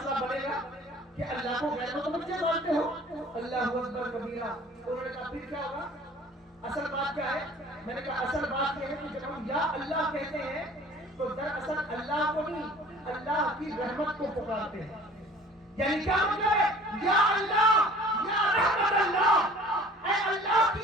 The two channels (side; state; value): both; normal; correlation 0.49